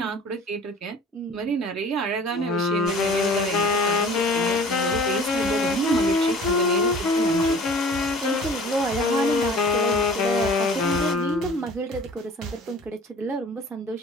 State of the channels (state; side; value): normal; both; correlation 0.46